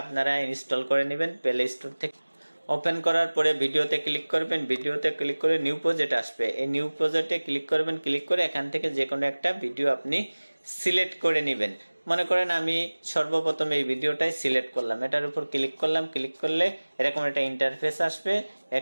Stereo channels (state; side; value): inverted; both; correlation -1.00